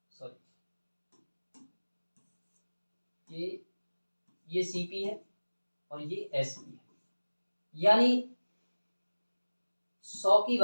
सॉरी, ये सीपी है और ये एसपी है, यानी 100 की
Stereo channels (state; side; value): inverted; both; correlation -1.00